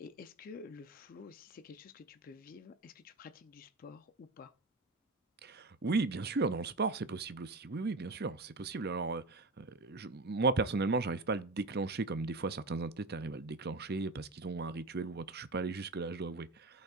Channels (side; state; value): left; quieter; 3.1 dB